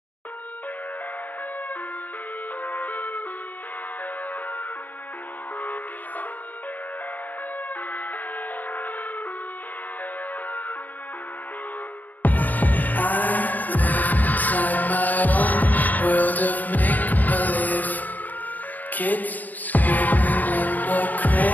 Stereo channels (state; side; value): late; right; 0.082 ms